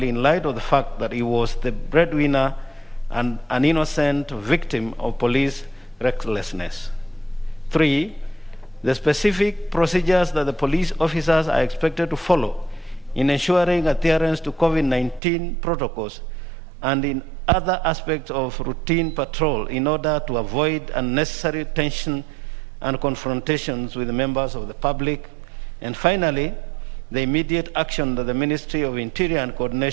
in light of the fact that he was the breadwinner and an innocent victim of police recklessness. Three, the specific procedures that the police officers are expected to follow in ensuring adherence to COVID-19 protocols and in other aspects of routine patrol in order to avoid unnecessary tension and confrontations with the members of the public. And finally, the immediate action that the Ministry of Interior and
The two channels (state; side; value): drops out; left; at 15.2 s